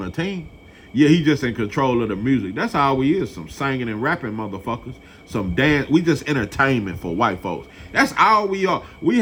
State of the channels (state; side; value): identical; both; correlation 1.00